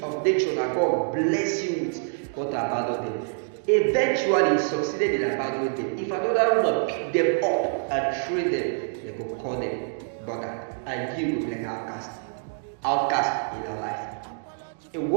of nature that God bless you with. You want to abandon them. Eventually, you succeeded in abandoning them. If another woman pick them up and train them, they will call them brother, and you will be like outcast in your life. A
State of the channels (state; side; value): silent; left; digital silence